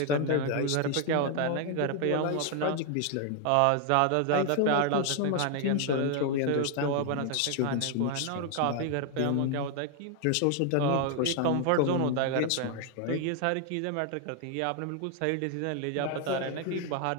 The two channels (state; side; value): different; both; correlation 0.00